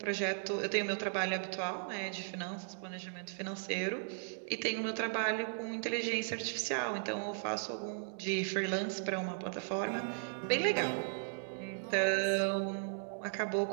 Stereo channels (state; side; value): silent; left; digital silence